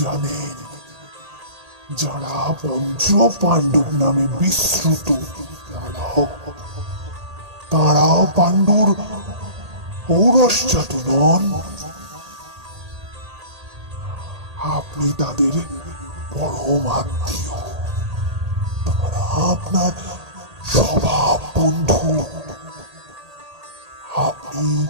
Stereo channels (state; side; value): late; left; 1.8 ms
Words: জানেন, যারা পঞ্চ পাণ্ডব নামে বিশ্রুত, তারাও পাণ্ডুর ঔরসজাত নন। আপনি তাদের পরম আত্মীয়, তারা আপনার স্বভাব বন্ধু।